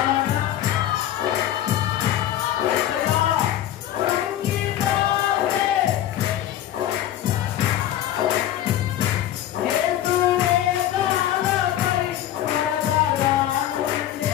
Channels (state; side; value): quieter; right; 12.2 dB